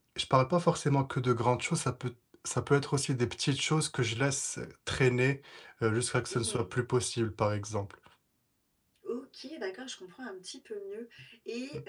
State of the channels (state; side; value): identical; both; correlation 1.00